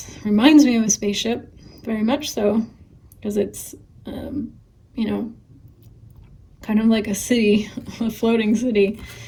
reminds me of a spaceship, very much so, because it's, you know, kind of like a city, a floating city.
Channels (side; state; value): both; identical; correlation 1.00